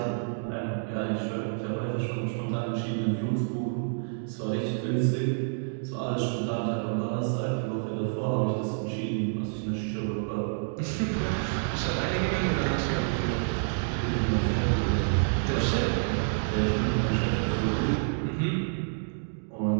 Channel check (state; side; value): silent; left; digital silence